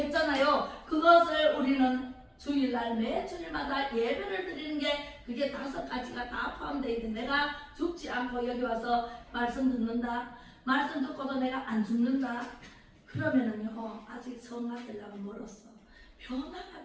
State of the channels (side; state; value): both; identical; correlation 1.00